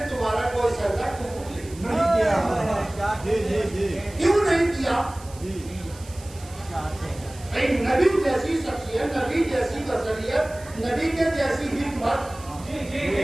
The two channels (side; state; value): right; noise; hiss, 20 dB below the sound